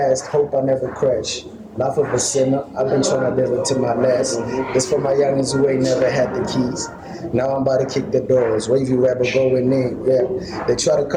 hope I never crash. Life of a sinner, I've been trying to live it to my last. This for my youngins who ain't never had the keys. Now I'm about to kick the doors, wavy rapper going in, yeah. They try to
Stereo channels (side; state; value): both; identical; correlation 1.00